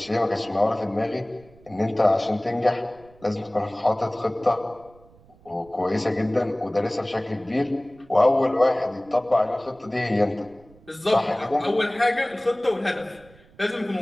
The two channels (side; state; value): right; noise; rumble, 27 dB below the sound